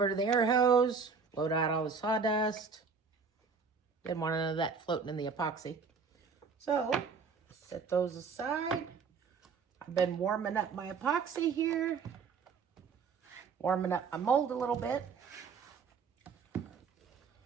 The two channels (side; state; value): left; quieter; 5.4 dB